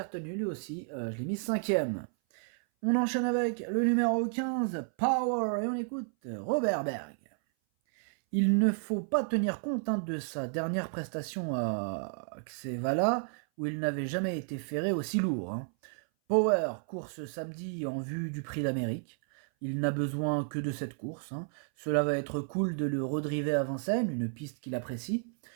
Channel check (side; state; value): left; silent; 57 dB below the other